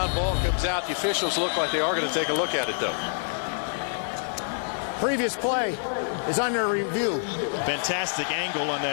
ball comes out. The officials look like they are going to take a look at it, though. Previous play is under review. Fantastic angle on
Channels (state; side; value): silent; right; digital silence